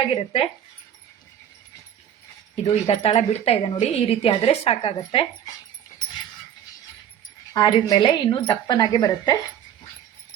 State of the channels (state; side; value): quieter; left; 9.8 dB